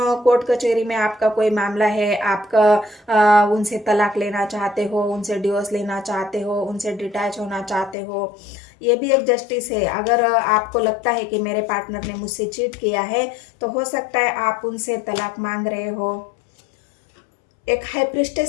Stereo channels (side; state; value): right; drops out; at 8.0 s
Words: कोर्ट कचहरी में आपका कोई मामला है, आपका उनसे तलाक लेना चाहते हो, उनसे डिवोर्स लेना चाहते हो, उनसे डिटैच होना चाहते हो। ये भी एक जस्टिस है। अगर आपको लगता है कि मेरे पार्टनर ने मुझसे चीट किया है, तो हो सकता है आप उनसे तलाक मांग रहे हो। एक हाई